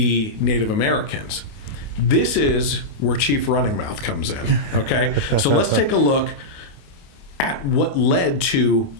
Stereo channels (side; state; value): right; late; 28 ms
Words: Native Americans. This is where Chief Running Mouth comes in, okay? So let's take a look at what led to